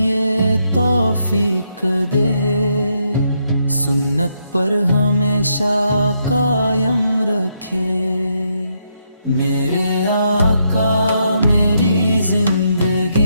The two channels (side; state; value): both; inverted; correlation -0.78